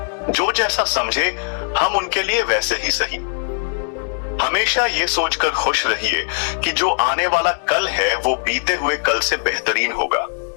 जो जैसा समझे हम उनके लिए वैसे ही सही। हमेशा ये सोचकर खुश रहिए कि जो आने वाला कल है वो बीते हुए कल से बेहतरीन होगा।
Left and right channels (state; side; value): silent; right; digital silence